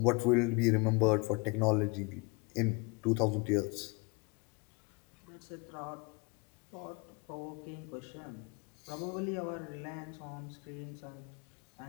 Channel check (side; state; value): right; quieter; 29.4 dB